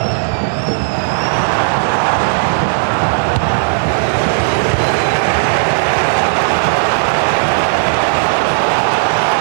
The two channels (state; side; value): silent; left; digital silence